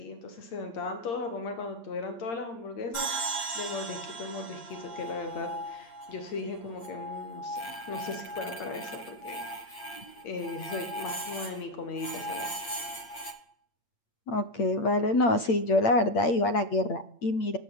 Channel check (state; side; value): late; right; 8.7 ms